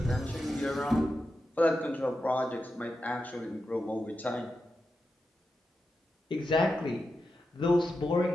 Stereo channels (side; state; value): both; normal; correlation 0.89